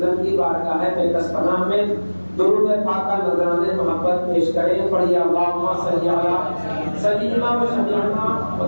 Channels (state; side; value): inverted; both; correlation -1.00